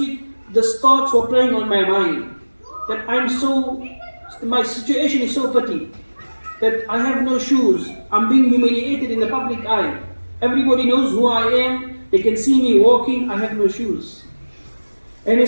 these thoughts were playing on my mind. That my situation is so petty. That I have no shoes. I'm being humiliated in the public eye. Everybody knows who I am. They can see me walking. I have no shoes. And he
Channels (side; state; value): both; inverted; correlation -1.00